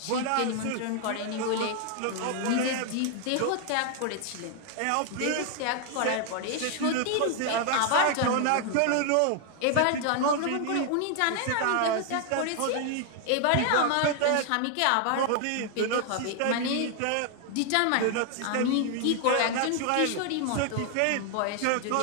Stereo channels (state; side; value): different; both; correlation 0.00